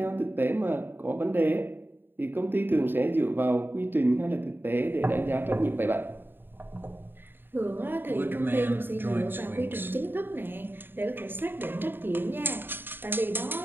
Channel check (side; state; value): left; late; 0.098 ms